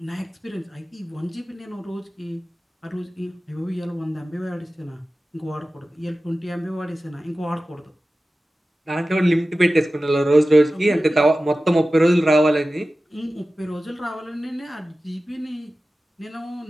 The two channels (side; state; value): both; normal; correlation 0.95